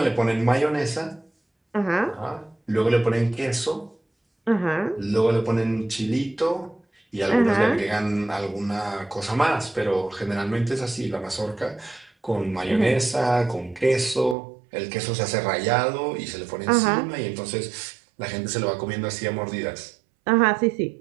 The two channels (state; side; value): drops out; left; at 14.4 s